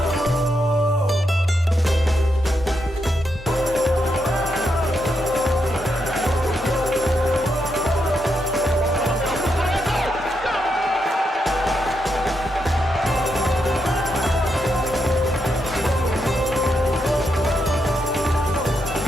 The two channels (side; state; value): both; normal; correlation 0.82